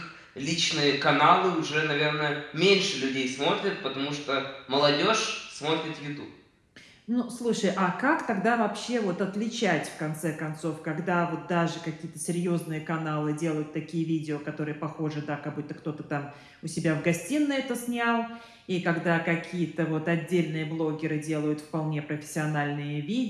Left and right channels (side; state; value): both; identical; correlation 1.00